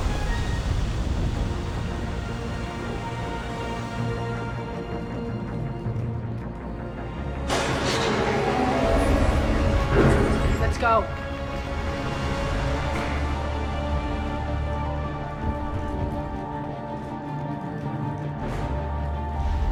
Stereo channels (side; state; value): both; identical; correlation 1.00